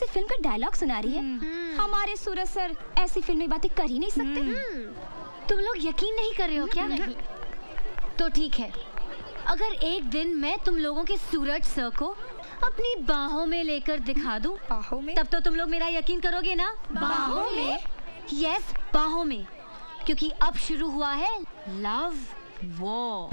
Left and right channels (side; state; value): both; inverted; correlation -1.00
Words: फिल्म का डायलॉग सुना रही है। हमारे सूरज सर ऐसी फिल्मी बातें कर ही नहीं सकते। तुम लोग यकीन नहीं कर रहे हो क्या? नहीं। तो ठीक है, अगर एक दिन मैं तुम लोगों के सूरज सर को अपनी बाहों में लेकर दिखा दूं, बाहों में? तब तो तुम लोग मेरा यकीन करोगे ना? बाहों में? यस, बाहों में, क्योंकि अब शुरू हुआ है लव